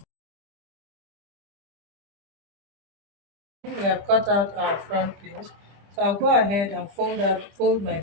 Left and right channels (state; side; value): late; left; 25 ms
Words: We have cut out our front piece. So I'll go ahead and fold my